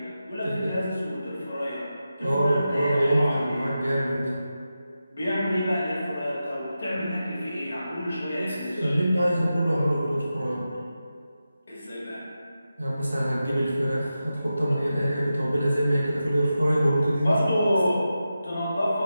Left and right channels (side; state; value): both; inverted; correlation -0.91